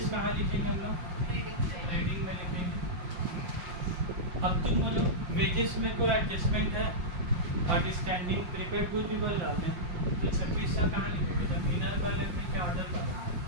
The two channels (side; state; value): left; late; 5.6 ms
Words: कहाँ लिखेंगे हम लोग रीडिंग में लिखेंगे। अब तुम बोलो वेजेस में कोई एडजस्टमेंट है, आउटस्टैंडिंग प्रीपेड गुड भी बोल रहा हूँ, तो 2600 कहाँ लिखेंगे, जब इनर कॉलम में क्या आउटर कॉलम,